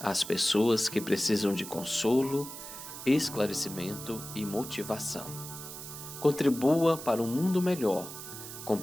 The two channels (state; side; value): noise; right; hiss, 11 dB below the sound